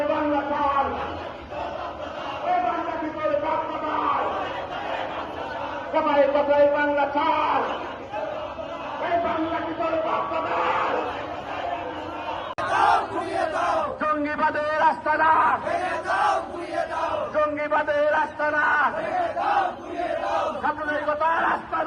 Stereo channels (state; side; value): identical; both; correlation 1.00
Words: বাংলা চাই, এই বাংলা ভিতরে কাজটা দেয়, কথায় কথায় বাংলা চাই, এই বাংলা ভিতরে কাজটা দেয়। জঙ্গিবাদের আস্তানা, জঙ্গিবাদের আস্তানা, সাম্প্রদায়িকতার